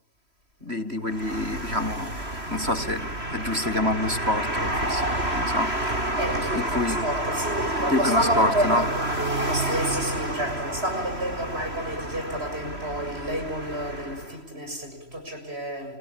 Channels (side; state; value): left; late; 3.1 ms